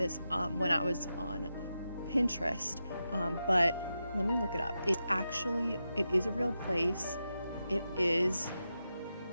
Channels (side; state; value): both; inverted; correlation -0.89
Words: when I was on Pinterest, but let me look it up. It is a real place. It is